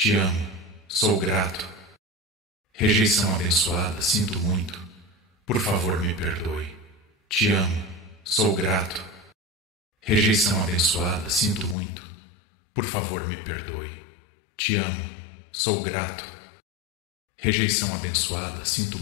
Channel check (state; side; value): drops out; right; at 11.8 s